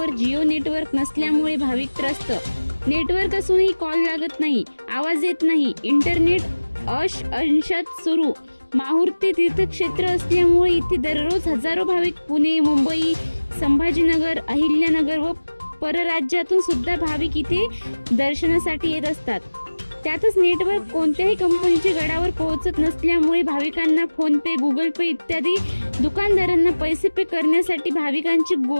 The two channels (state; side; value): inverted; both; correlation -1.00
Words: Jio network नसल्यामुळे भाविक त्रस्त। नेटवर्क असूनही कॉल लागत नाही, आवाज येत नाही, इंटरनेट अंशतः सुरू। माहूर ते तीर्थक्षेत्र असल्यामुळे इथे दररोज हजारो भाविक पुणे, मुंबई, संभाजीनगर, अहिल्यानगर व परराज्यातून सुद्धा भाविक इथे दर्शनासाठी येत असतात। त्यातच नेटवर्क कोणत्याही कंपनीचे गडावर पोहोचत नसल्यामुळे भाविकांना फोन पे, गुगल पे इत्यादी दुकानदारांना पैसे पे करण्यासाठी भाविकांची